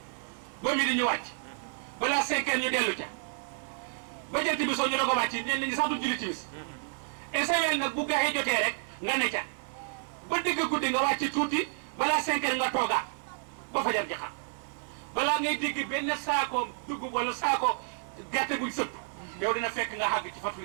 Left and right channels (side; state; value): left; silent; 58 dB below the other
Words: ba mi di ñu wàcc balaa 5 heures ñu dellu ca ba jant bi soo ñu doog a wàcc ñenn ñi sax du julli timis esewel nag bu gaxee jotee rek nga ne ca ba dëgg guddi nga wàcc tuuti balaa 5 heures nga toogaat ba fajar ji xam balaa ngay dégg benn saako dugub wala saako gerte buñ sëpp yow dina fekk nga xàgg ci fatul